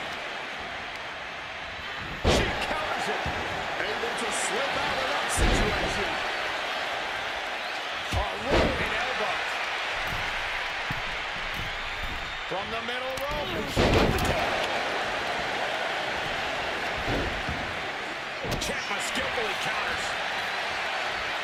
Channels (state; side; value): identical; both; correlation 1.00